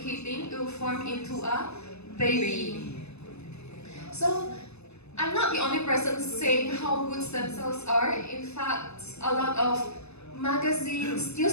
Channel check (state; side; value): late; right; 0.80 ms